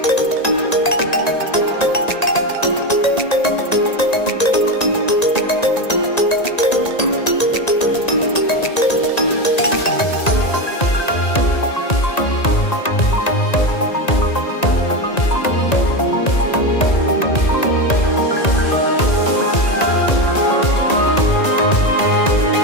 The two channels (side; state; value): right; late; 1.9 ms